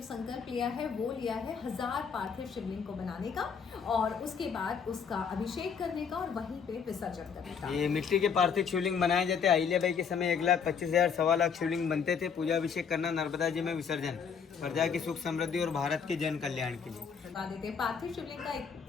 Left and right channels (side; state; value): right; quieter; 6.5 dB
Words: संकल्प लिया है वो लिया है 1000 पार्थिव शिवलिंग को बनाने का और उसके बाद उसका अभिषेक करने का और वहीं पे विसर्जन करने का। ये मिट्टी के पार्थिव शिवलिंग बनाए जाते। अहिल्याबाई के समय 1,25,000 सवा लाख शिवलिंग बनते थे। पूजा अभिषेक करना, नर्मदा जी में विसर्जन, प्रजा की सुख समृद्धि और भारत के जन कल्याण के लिए बता देते। पार्थिव शिवलिंग का